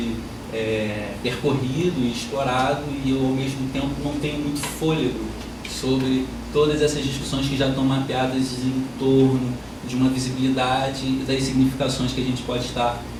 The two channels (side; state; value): both; identical; correlation 1.00